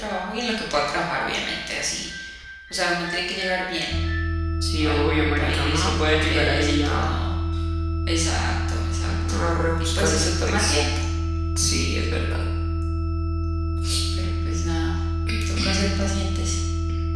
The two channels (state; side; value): identical; both; correlation 1.00